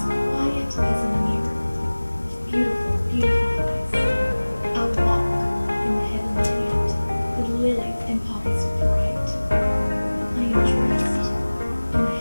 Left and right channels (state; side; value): inverted; both; correlation -1.00